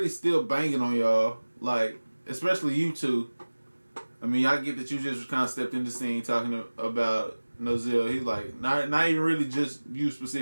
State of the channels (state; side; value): inverted; both; correlation -1.00